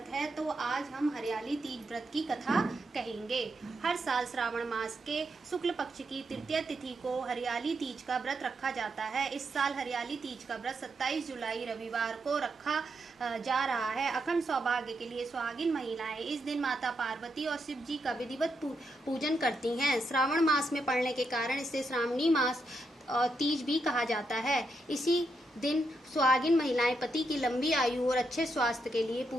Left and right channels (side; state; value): both; normal; correlation 0.81